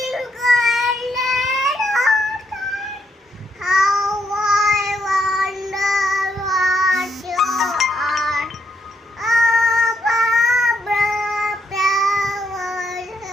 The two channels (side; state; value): both; normal; correlation 0.77